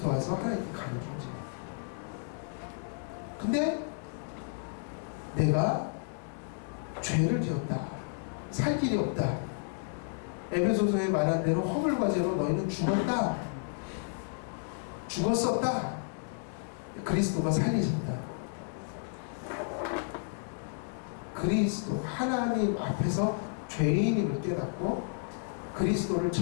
와서 하나님께 가는 존재. 근데 내가 죄를 지었다. 살 길이 없다. 에베소서에 말한 대로 허물과 죄로 너희는 죽었다. 죽었었다. 그리스도가 살리셨다. 그리스도 하나님 앞에서 죄인임을 깨닫고 그리스도를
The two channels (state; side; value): silent; right; digital silence